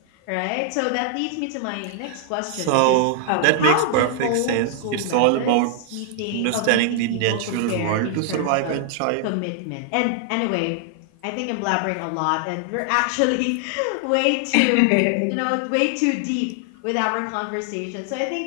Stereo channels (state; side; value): different; both; correlation 0.00